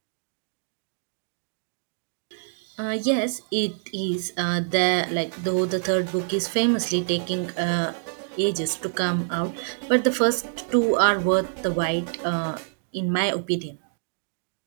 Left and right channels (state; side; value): silent; left; digital silence